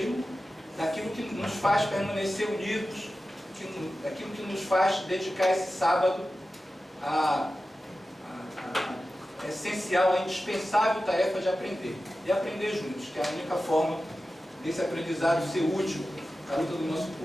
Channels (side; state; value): both; normal; correlation 0.94